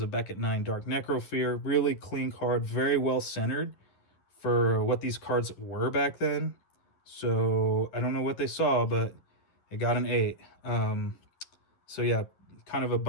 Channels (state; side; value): late; right; 10 ms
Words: Beckett 9 Dark Necrofear. Really clean card, very well centered for what these cards were back then. So I don't know what they saw, but it got an 8. So yeah, kind of a